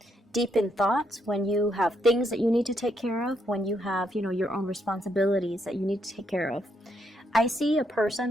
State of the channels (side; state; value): both; normal; correlation 0.76